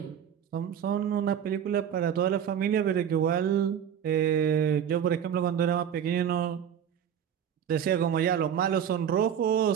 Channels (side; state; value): left; quieter; 8.8 dB